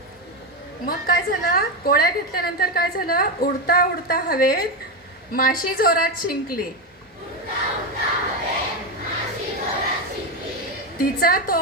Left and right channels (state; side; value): normal; both; correlation 0.11